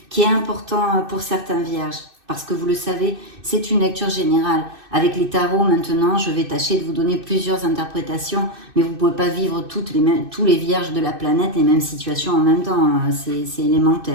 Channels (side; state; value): left; late; 2.6 ms